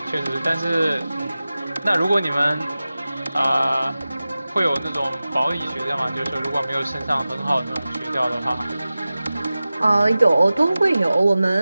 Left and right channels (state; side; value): inverted; both; correlation -0.96